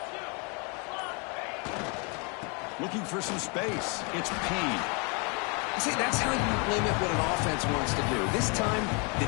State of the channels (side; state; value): right; quieter; 33.9 dB